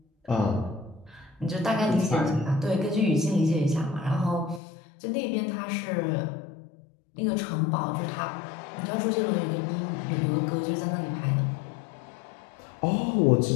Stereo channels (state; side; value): drops out; right; at 4.6 s